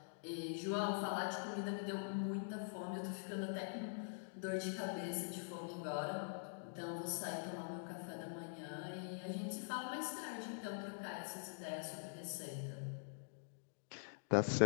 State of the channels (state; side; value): silent; right; digital silence